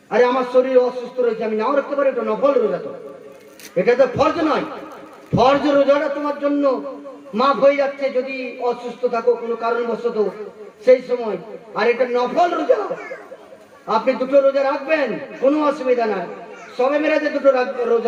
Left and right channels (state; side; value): identical; both; correlation 1.00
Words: আরে আমার শরীর অসুস্থ রয়েছে, আমি নাও রাখতে পারি, এটা নফল রোজা, তো এটা তো ফরজ নয়। ফরজ রোজাটা তোমার জন্য মাফ হয়ে যাচ্ছে যদি অসুস্থ থাকো কোনো কারণবশত সেই সময়, আর এটা নফল রোজা। আপনি 2টো রোজা রাখবেন, কোনো অসুবিধা নাই। শবে মেরাজে 2টো